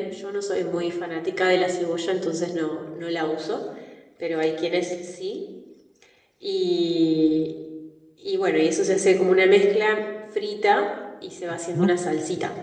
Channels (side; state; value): both; identical; correlation 1.00